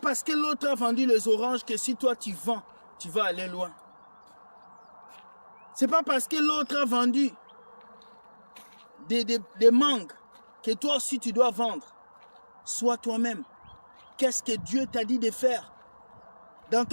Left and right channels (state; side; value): inverted; both; correlation -1.00